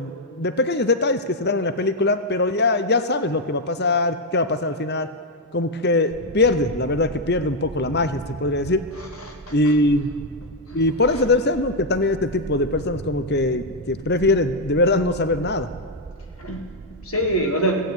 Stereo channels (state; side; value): normal; both; correlation 0.01